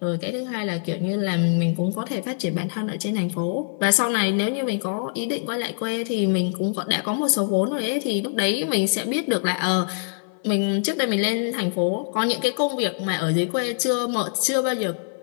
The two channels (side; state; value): right; silent; 57 dB below the other